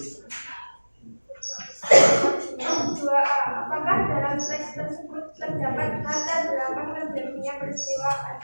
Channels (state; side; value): inverted; both; correlation -1.00